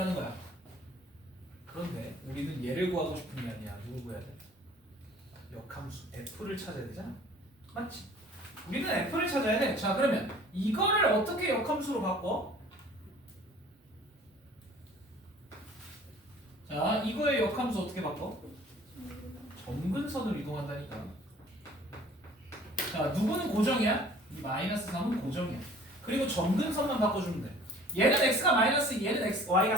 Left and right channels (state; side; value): normal; both; correlation 0.50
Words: 거야. 그런데 우리는 얘를 구하고 싶은 게 아니야. 누구 구해야 돼? 역함수 f를 찾아야 되잖아. 맞지? 우리는 f를 찾아야 돼. 자, 그러면 이거를 어떻게 역함수로 바꿔? 자, 이거의 역함수 어떻게 바꿔? 점근선을 이동한다니까. 자, 누구는 고정이야? 이 마이너스 3은 고정이야. 그리고 점근선만 바꿔주면 돼. 얘는 x가 마이너스, 얘는 x, y가